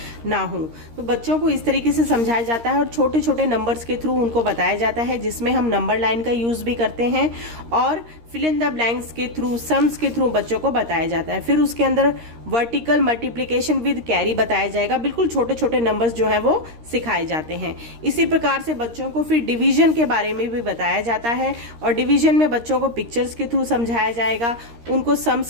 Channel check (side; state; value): left; late; 13 ms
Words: ना हो। तो बच्चों को इस तरीके से समझाया जाता है, और छोटे छोटे नंबर्स के थ्रू उनको बताया जाता है, जिसमें हम नंबर लाइन का यूज़ भी करते हैं, और फिल इन द ब्लैंक्स के थ्रू, सम्स के थ्रू बच्चों को बताया जाता है। फिर उसके अंदर वर्टिकल मल्टीप्लिकेशन विद कैरी बताया जाएगा। बिल्कुल छोटे छोटे नंबर्स जो हैं वो सिखाए जाते हैं। इसी प्रकार से बच्चों को फिर डिवीजन के बारे में भी बताया जाता है, और डिवीजन में बच्चों को पिक्चर्स के थ्रू समझाया जाएगा, उनको